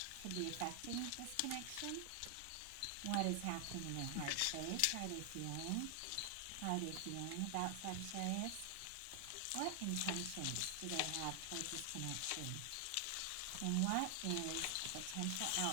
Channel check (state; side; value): different; both; correlation 0.00